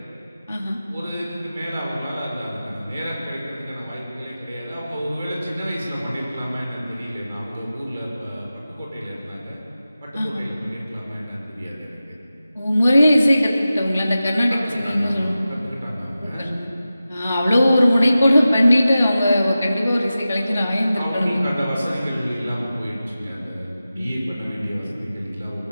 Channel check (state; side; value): inverted; both; correlation -0.94